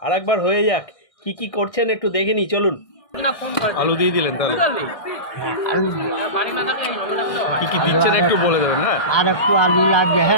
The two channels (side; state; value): right; late; 1.6 ms